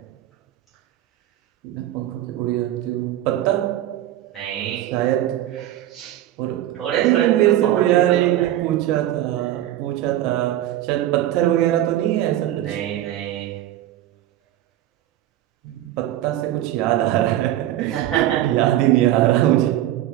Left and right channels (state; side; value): quieter; left; 13.3 dB